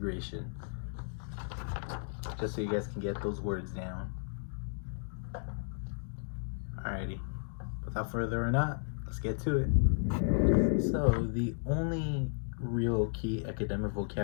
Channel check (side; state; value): right; silent; digital silence